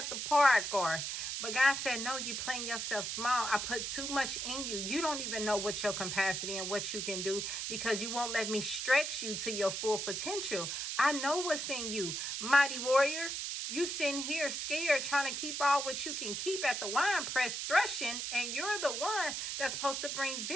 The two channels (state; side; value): noise; right; hiss, 3 dB below the sound